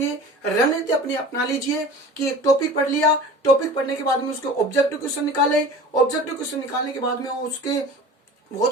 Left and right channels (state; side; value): normal; both; correlation 0.39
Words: रणनीति अपनी अपना लीजिए कि एक टॉपिक पढ़ लिया, टॉपिक पढ़ने के बाद में उसके ऑब्जेक्टिव क्वेश्चन निकाले, ऑब्जेक्टिव क्वेश्चन निकालने के बाद में उसके